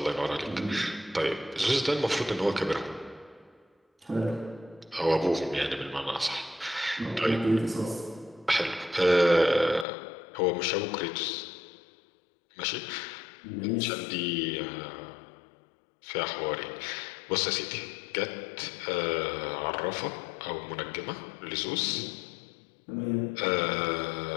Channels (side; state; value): right; drops out; at 9.9 s